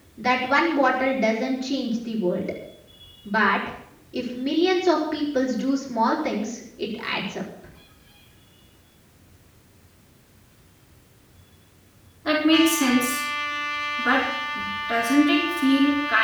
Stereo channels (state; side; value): identical; both; correlation 1.00